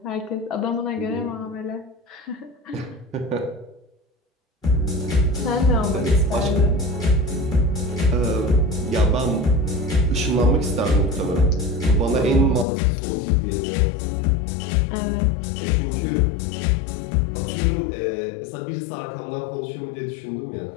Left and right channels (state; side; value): drops out; right; at 12.7 s